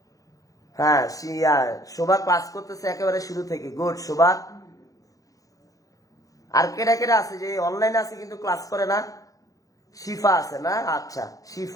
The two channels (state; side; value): late; right; 0.17 ms